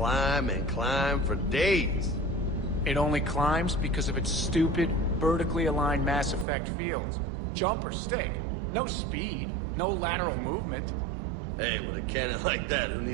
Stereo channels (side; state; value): left; drops out; at 6.5 s